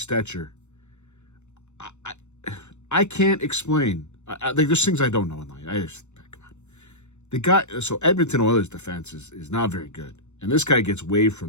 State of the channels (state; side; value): late; right; 0.83 ms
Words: I can't explain. There's things I don't know in life. Come on. The guy, so Edmonton Oilers defense is not very good. And this guy gets waived